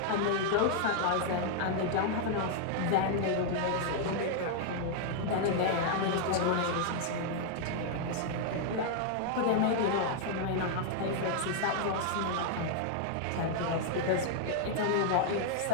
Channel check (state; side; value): different; both; correlation 0.00